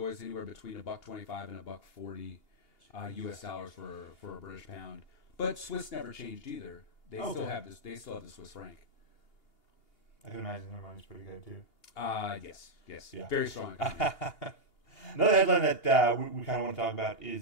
anywhere between $1.25 and $1.40 U.S. dollars for a British pound. But Swiss never changed either. They still have this. They still have the Swiss franc. I can imagine their money's pretty good too. Yes, yeah. Very strong. Another headline that we kind of want to talk about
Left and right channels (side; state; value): right; late; 2.8 ms